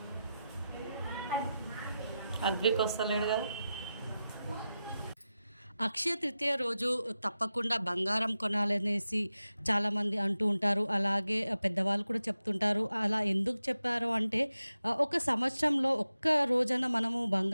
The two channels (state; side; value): inverted; both; correlation -0.91